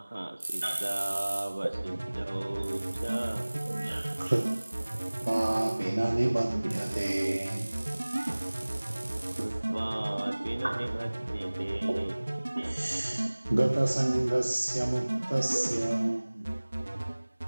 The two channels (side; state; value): both; inverted; correlation -1.00